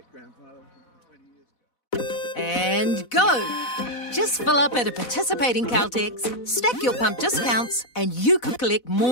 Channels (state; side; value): late; right; 4.0 ms